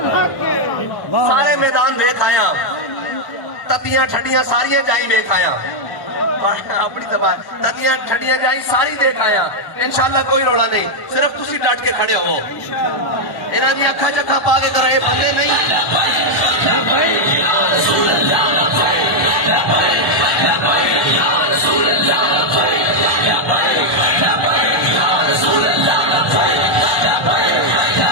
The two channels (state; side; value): late; right; 1.1 ms